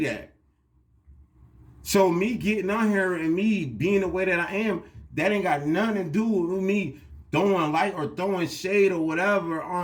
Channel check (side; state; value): both; identical; correlation 1.00